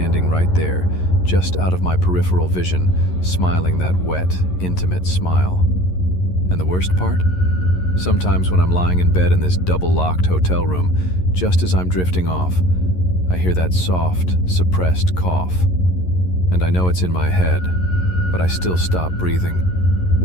right there, just out of my peripheral vision, smiling that wet, intimate smile? And the worst part? Sometimes when I'm lying in bed in this double-locked hotel room, just as I'm drifting off, I hear that soft, suppressed cough. And I know it's in my head, but I still stop breathing,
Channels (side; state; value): right; late; 11 ms